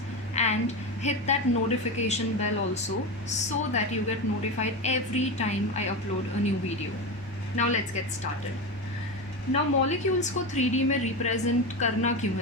and hit that notification bell also so that you get notified every time I upload a new video. Now let's get started. Now molecules को 3D में represent करना क्यों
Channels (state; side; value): normal; both; correlation 0.19